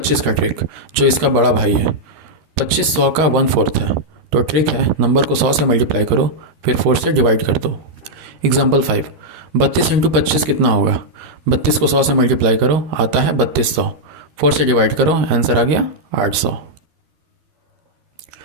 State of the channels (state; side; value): late; left; 13 ms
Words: का ट्रिक, जो इसका बड़ा भाई है। 25 100 का 1/4 है, तो ट्रिक है नंबर को 100 से मल्टीप्लाई करो, फिर 4 से डिवाइड कर दो। एग्जाम्पल 5, 32 इंटू 25 कितना होगा? 32 को 100 से मल्टीप्लाई करो, आता है 3200। 4 से डिवाइड करो, आंसर आ गया 800।